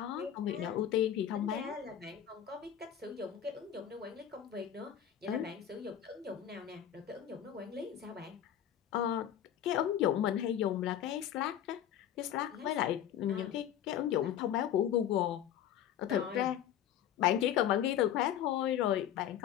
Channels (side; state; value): right; quieter; 10.3 dB